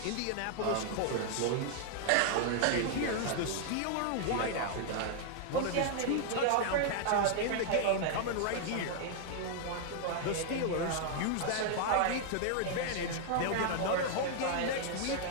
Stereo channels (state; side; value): different; both; correlation 0.00